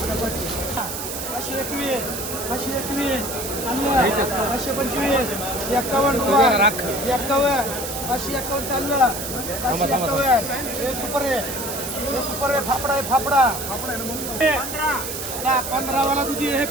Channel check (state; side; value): noise; right; hiss, 6 dB below the sound